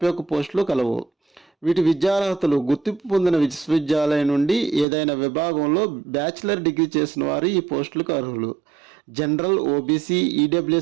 పోస్టులు కలవు. వీటి విద్యార్హతలు గుర్తింపు పొందిన విశ్వవిద్యాలయం నుండి ఏదైనా విభాగంలో బ్యాచిలర్ డిగ్రీ చేసిన వారు ఈ పోస్టులకు అర్హులు. జనరల్, ఓబీసీ,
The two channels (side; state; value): left; drops out; at 4.9 s